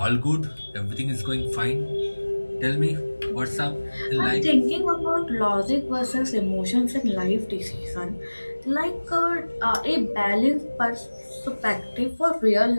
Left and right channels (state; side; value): inverted; both; correlation -1.00